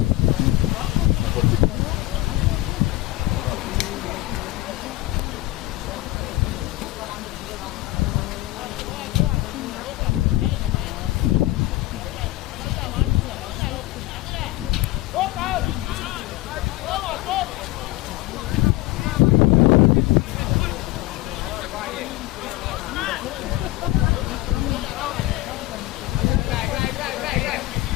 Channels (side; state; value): right; quieter; 18.0 dB